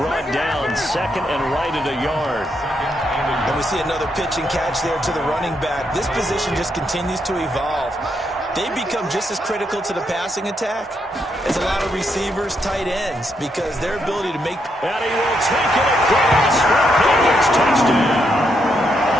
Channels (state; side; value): normal; both; correlation 0.78